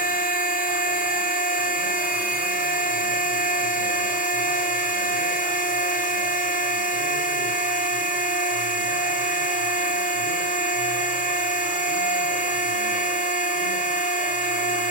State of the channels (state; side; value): late; left; 33 ms